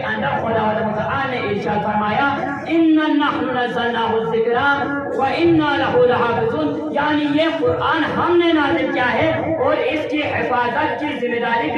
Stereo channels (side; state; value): both; identical; correlation 1.00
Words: اندر خداوند متعال نے ارشاد فرمایا: اِنَّا نَحْنُ نَزَّلْنَاهُ الذِّكْرَ وَإِنَّا لَهُ لَحَافِظُونَ، یعنی یہ قرآن ہم نے نازل کیا ہے اور اس کی حفاظت کی ذمہ داری